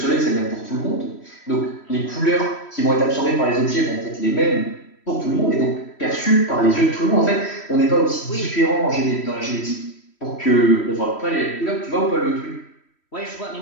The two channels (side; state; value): right; late; 3.1 ms